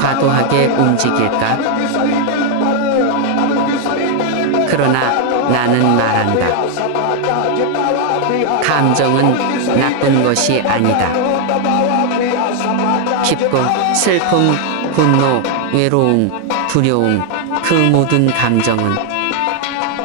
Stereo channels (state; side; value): different; both; correlation 0.00